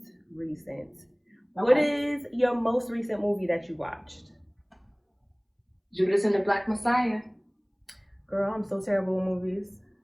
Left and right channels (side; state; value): both; identical; correlation 1.00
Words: recent. What Okay. is your most recent movie that you watched? Judas and the Black Messiah. Girl, I'm so terrible with movies.